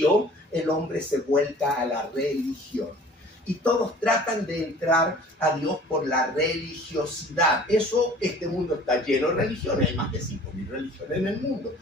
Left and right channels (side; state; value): both; normal; correlation 0.48